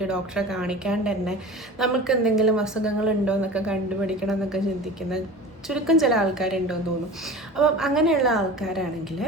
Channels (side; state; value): both; normal; correlation 0.37